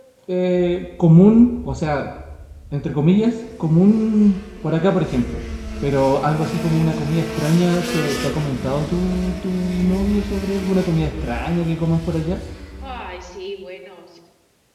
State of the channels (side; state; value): both; identical; correlation 1.00